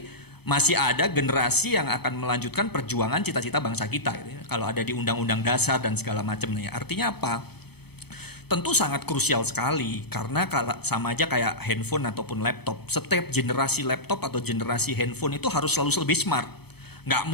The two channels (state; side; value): late; right; 0.97 ms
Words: masih ada generasi yang akan melanjutkan perjuangan cita-cita bangsa kita gitu ya. Kalau ada di undang-undang dasar dan segala macamnya. Artinya apa? Tentu sangat krusial sekali karena sama aja kayak handphone ataupun laptop. Setiap generasi laptop atau generasi handphone itu harus selalu lebih smart. Nggak